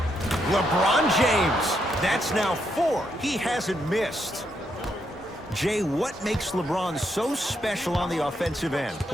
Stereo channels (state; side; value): normal; both; correlation 0.78